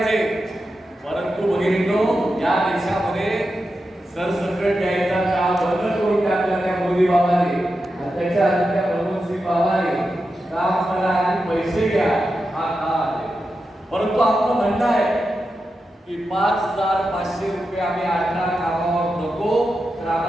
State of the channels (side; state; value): both; normal; correlation 0.89